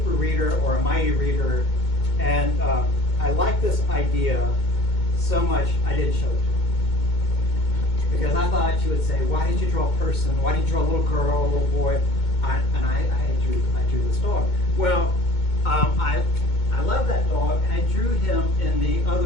reader or a mighty reader. And I liked this idea so much, I didn't show it to her. Because I thought she would say, why did you draw a person? Why did you draw a little girl, a little boy? I drew this dog. Well, I love that dog, and I drew him in the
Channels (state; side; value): late; right; 2.2 ms